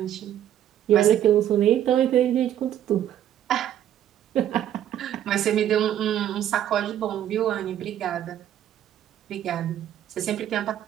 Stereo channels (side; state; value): left; quieter; 11.1 dB